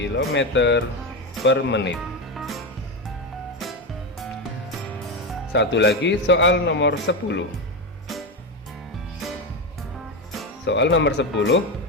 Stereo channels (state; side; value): normal; both; correlation 0.13